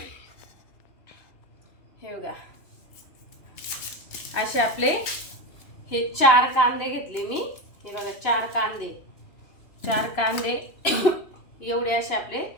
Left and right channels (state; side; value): late; right; 2.9 ms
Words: हे बघा, असे आपले हे 4 कांदे घेतले मी. हे बघा, 4 कांदे एवढे असे आपले